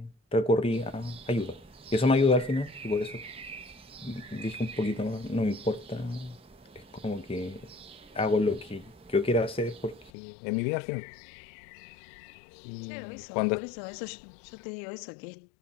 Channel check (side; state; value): right; drops out; at 10.1 s